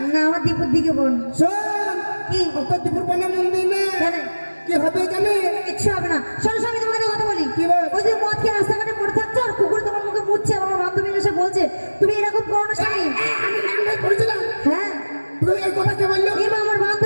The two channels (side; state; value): both; inverted; correlation -1.00